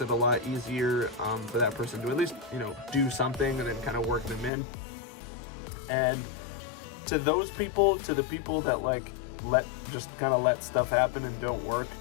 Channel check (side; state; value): right; drops out; at 4.5 s